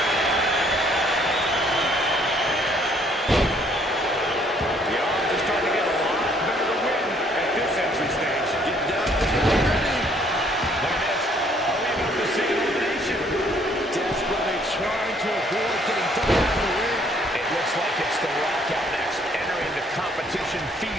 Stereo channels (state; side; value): normal; both; correlation 0.63